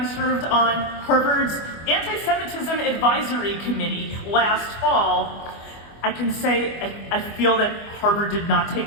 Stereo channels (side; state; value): right; late; 25 ms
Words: served on Harvard's Antisemitism Advisory Committee last fall. I can say I feel that Harvard did not